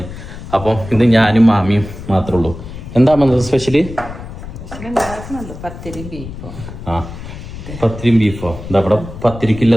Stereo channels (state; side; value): noise; left; rumble, 11 dB below the sound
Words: അപ്പോൾ ഇന്ന് ഞാനും മാമിയും മാത്രമേ ഉള്ളൂ. എന്താ സ്പെഷ്യല്? പത്തിരിയും ബീഫോ. എന്താ ഇവിടെ